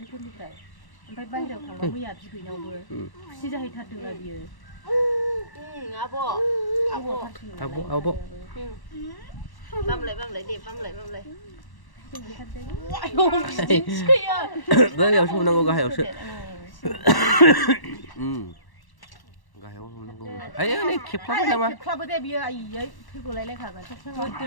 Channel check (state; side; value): late; right; 1.1 ms